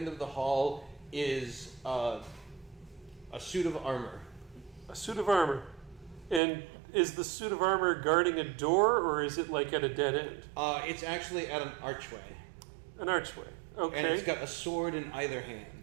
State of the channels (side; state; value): left; drops out; at 6.4 s